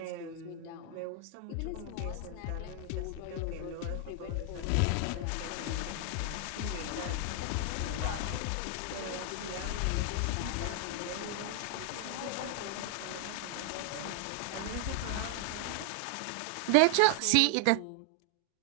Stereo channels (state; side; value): different; both; correlation 0.00